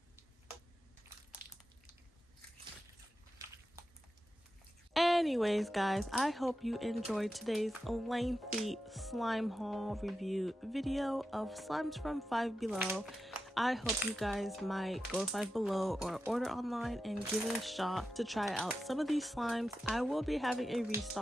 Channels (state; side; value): normal; both; correlation 0.90